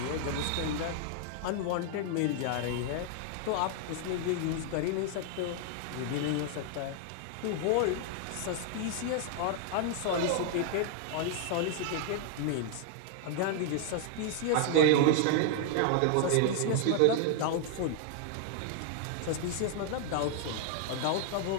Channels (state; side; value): different; both; correlation -0.01